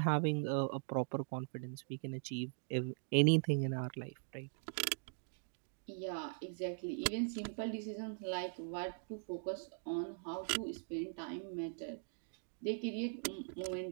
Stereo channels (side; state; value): left; silent; digital silence